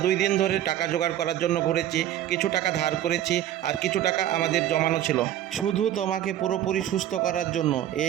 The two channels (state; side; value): quieter; left; 12.0 dB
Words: 2 দিন ধরে টাকা জোগাড় করার জন্য ঘুরেছি, কিছু টাকা ধার করেছি আর কিছু টাকা আমাদের জমানো ছিল, শুধু তোমাকে পুরোপুরি সুস্থ করার জন্য।